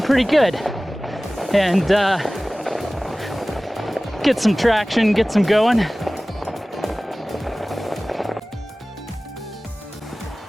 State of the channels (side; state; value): both; normal; correlation 0.98